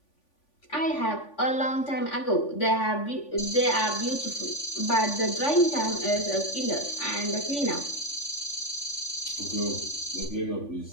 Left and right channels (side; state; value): right; late; 3.5 ms